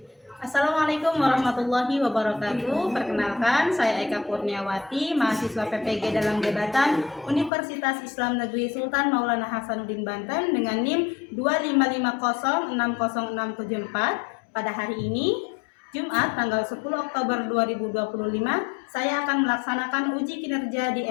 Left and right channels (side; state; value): right; drops out; at 7.5 s